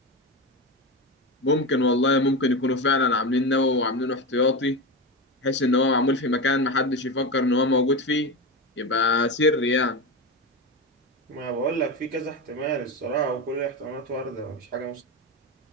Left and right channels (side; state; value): both; normal; correlation 0.19